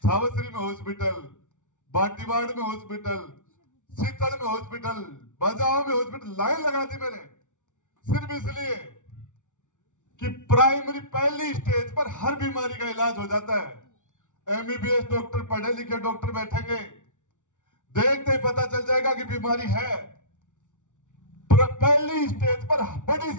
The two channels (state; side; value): late; right; 0.86 ms